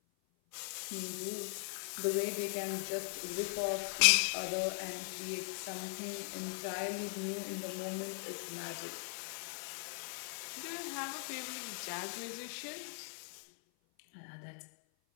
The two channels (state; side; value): silent; right; 52 dB below the other